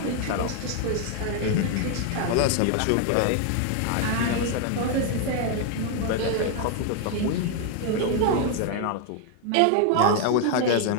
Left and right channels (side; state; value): both; different; correlation 0.00